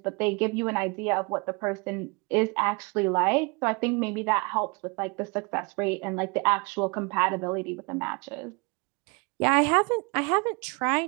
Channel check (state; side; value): quieter; left; 30.5 dB